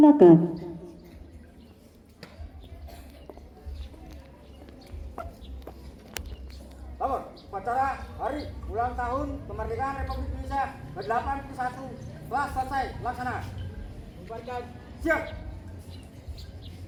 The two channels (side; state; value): both; identical; correlation 1.00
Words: Lapor, upacara hari ulang tahun kemerdekaan Republik Indonesia ke-81 telah selesai laksana. Bubarkan. Siap.